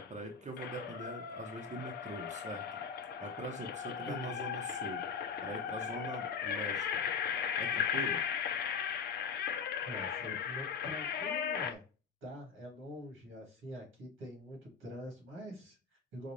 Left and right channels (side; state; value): right; quieter; 5.6 dB